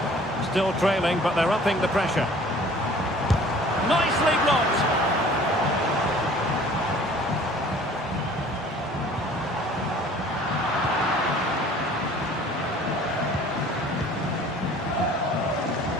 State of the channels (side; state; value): both; normal; correlation 0.50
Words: Still trailing, but they're upping the pressure. Nicely blocked.